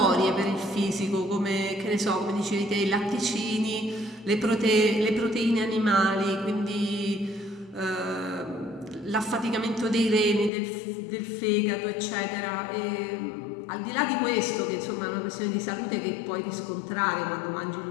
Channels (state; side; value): drops out; right; at 10.5 s